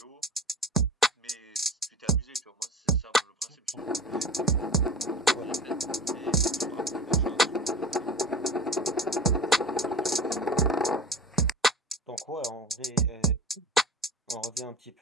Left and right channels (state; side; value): normal; both; correlation 0.35